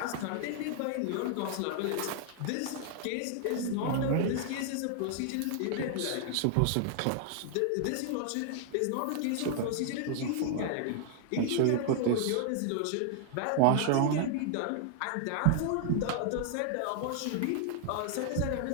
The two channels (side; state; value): both; different; correlation 0.00